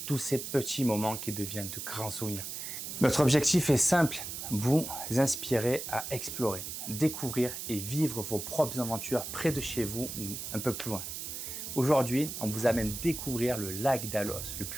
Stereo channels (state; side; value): noise; right; hiss, 7 dB below the sound